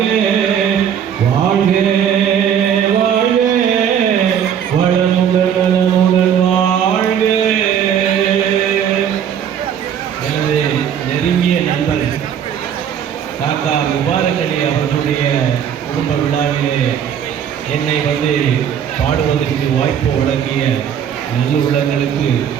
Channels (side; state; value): left; quieter; 8.7 dB